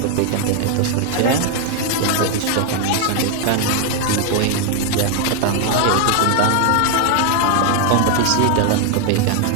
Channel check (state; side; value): different; both; correlation 0.00